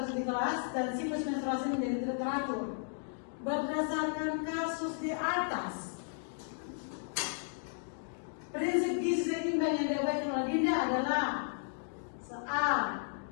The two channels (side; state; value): right; silent; digital silence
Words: kelas, dan siklus menstruasi menjadi tidak teratur. Berdasarkan kasus di atas, prinsip gizi seimbang yang diabaikan oleh Dinda adalah A.